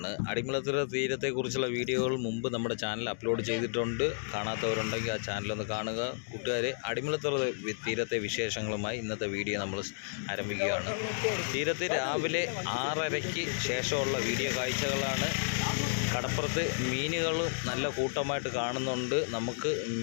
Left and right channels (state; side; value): silent; right; digital silence